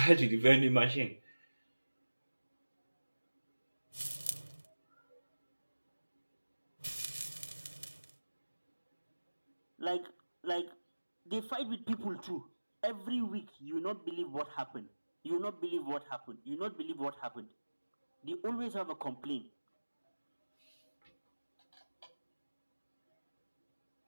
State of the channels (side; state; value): both; inverted; correlation -1.00